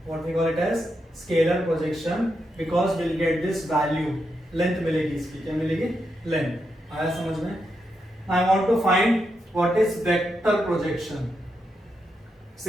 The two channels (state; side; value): normal; both; correlation 0.84